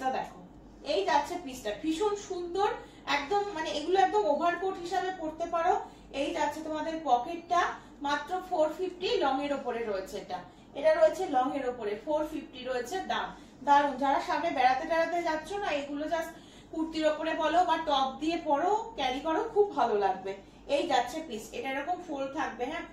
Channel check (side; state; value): both; identical; correlation 1.00